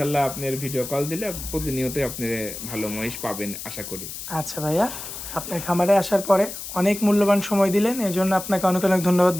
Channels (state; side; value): noise; left; hiss, 9 dB below the sound